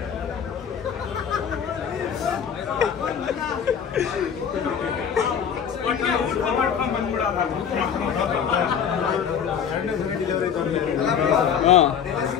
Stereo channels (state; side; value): quieter; right; 7.7 dB